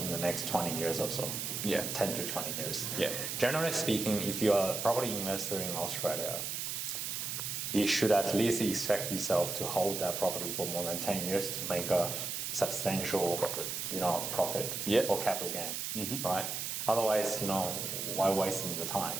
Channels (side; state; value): right; noise; hiss, 3 dB below the sound